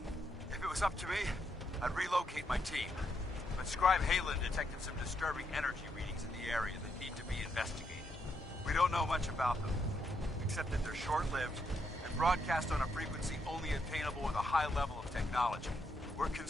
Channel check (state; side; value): normal; both; correlation 0.79